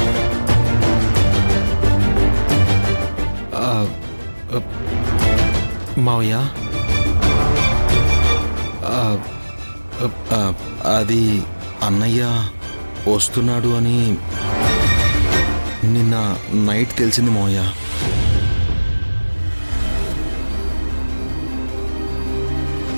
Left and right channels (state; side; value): inverted; both; correlation -1.00